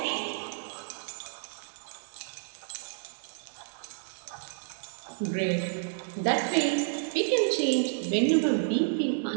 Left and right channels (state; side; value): silent; left; digital silence